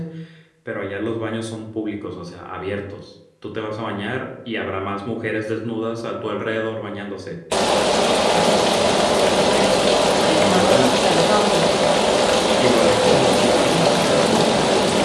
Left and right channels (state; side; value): identical; both; correlation 1.00